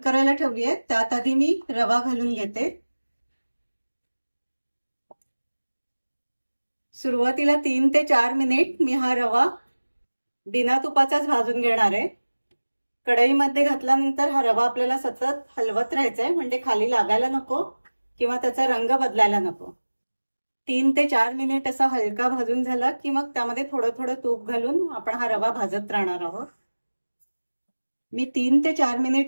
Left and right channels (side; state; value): both; inverted; correlation -1.00